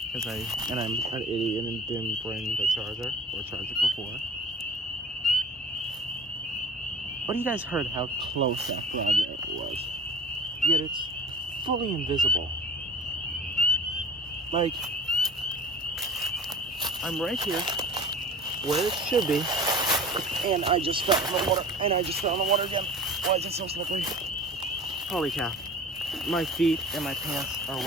I'm an idiot and didn't bring the charger or charge it before. But you guys heard how close that frog was. Yet it's fully invisible. Like, I'm right here, where it should be, and I just fell in the water, again. Why is it so slippery? Holy cow. My feet and my pants are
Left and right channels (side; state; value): both; normal; correlation 0.40